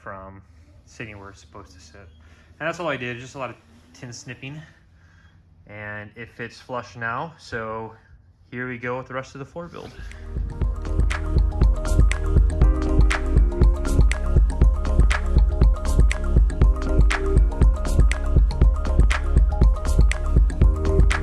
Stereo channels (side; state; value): both; identical; correlation 1.00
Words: sitting where it's supposed to sit. And that's all I did, just a lot of tin snipping. And it fits flush now, so here we go with the rest of the floor build.